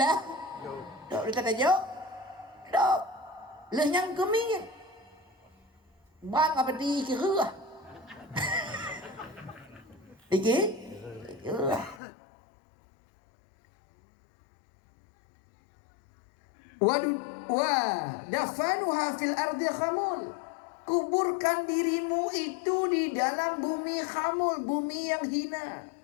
dok. Dia kata jok, dok. Lu yang kemingin. Bang apa di kira? Iki? Kira. Wa dafanuha fil ardi khamul. Kuburkan dirimu itu di dalam bumi khamul, bumi yang hina.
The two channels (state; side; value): drops out; right; at 12.0 s